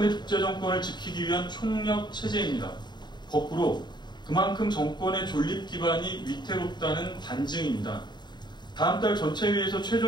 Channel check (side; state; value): right; late; 0.21 ms